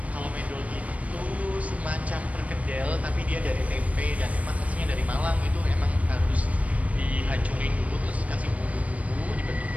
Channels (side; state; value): left; late; 0.067 ms